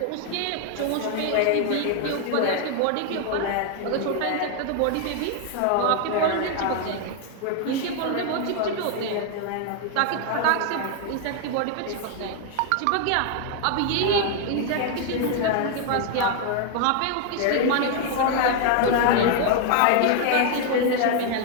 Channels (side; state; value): both; different; correlation 0.00